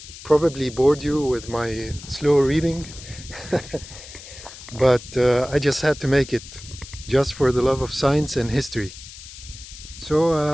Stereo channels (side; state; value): left; noise; hiss, 15 dB below the sound